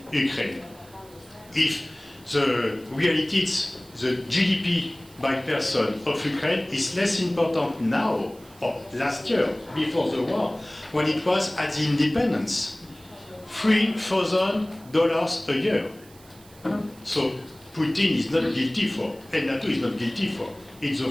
Ukraine, if the reality is the GDP by person of Ukraine is less important now, or last year, before the war, when it was at the independence. $3,000 a year. So Putin is not guilty for, and NATO is not guilty for. It's the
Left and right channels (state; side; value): noise; right; hiss, 25 dB below the sound